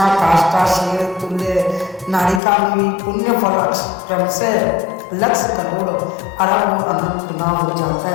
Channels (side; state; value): right; drops out; at 2.4 s